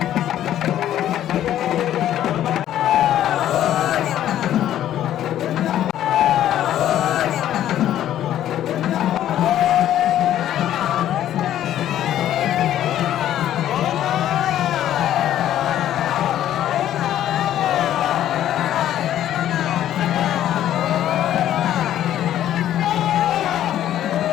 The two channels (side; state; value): right; quieter; 11.8 dB